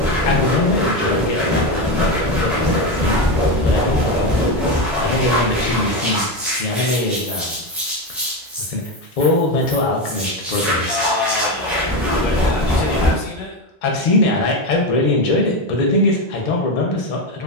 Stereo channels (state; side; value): normal; both; correlation 0.13